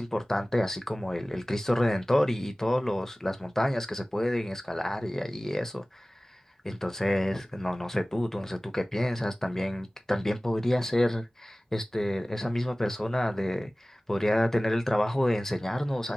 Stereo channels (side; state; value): both; normal; correlation 0.98